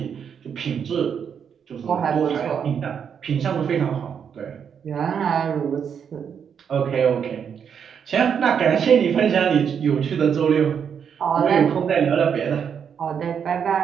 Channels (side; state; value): left; quieter; 7.5 dB